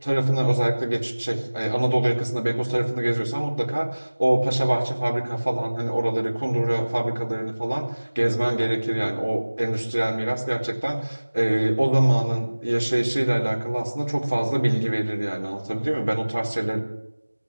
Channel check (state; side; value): inverted; both; correlation -1.00